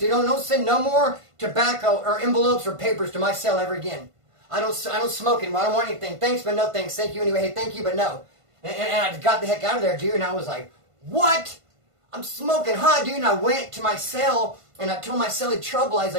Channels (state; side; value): late; left; 1.5 ms